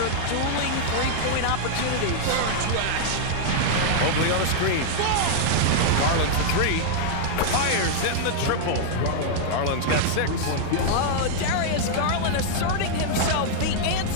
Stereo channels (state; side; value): different; both; correlation -0.01